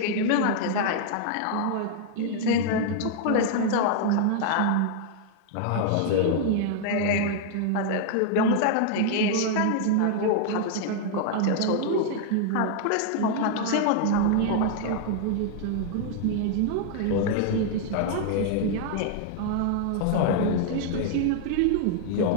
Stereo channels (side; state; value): both; different; correlation 0.00